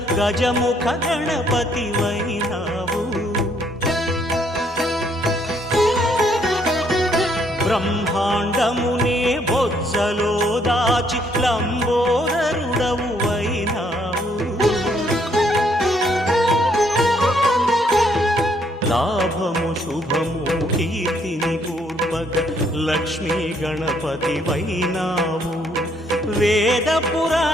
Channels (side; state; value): both; normal; correlation 0.69